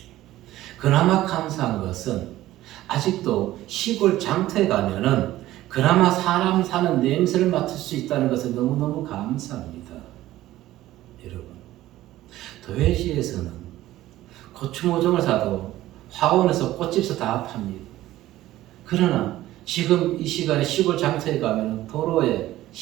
그나마 감사한 것은 아직도 시골 장터에 가면은 그나마 사람 사는 냄새를 맡을 수 있다는 것은 너무너무 감사합니다. 여러분, 도회지에서는 고추 모종을 사도 화원에서 꽃집에서 다 팝니다. 그러나 지금 이 시간에 시골 장터에 가면 도로에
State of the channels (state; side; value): quieter; left; 15.2 dB